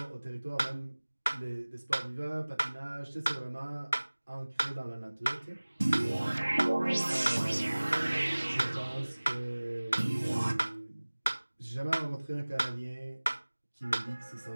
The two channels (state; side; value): inverted; both; correlation -1.00